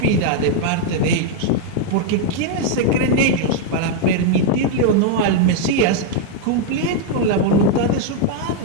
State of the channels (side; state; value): both; different; correlation 0.00